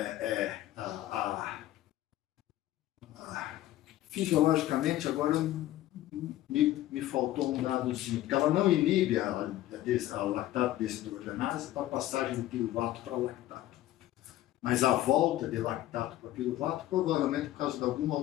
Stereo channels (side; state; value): right; quieter; 14.5 dB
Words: fisiologicamente, agora me faltou um dadozinho, porque ela não inibe a lactato desidrogenase para a passagem do piruvato para lactato. Mas a volta de lactato para piruvato, provavelmente por causa de alguma